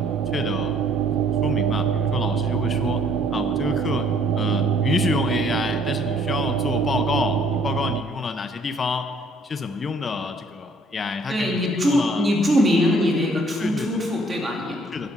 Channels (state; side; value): normal; both; correlation 0.61